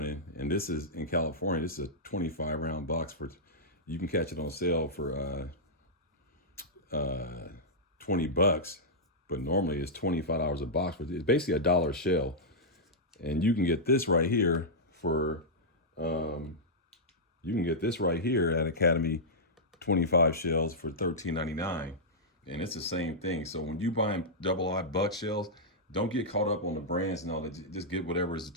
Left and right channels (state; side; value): normal; both; correlation -0.10